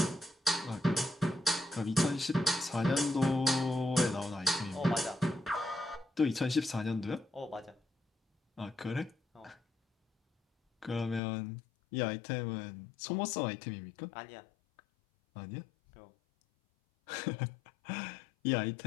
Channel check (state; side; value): drops out; right; at 11.2 s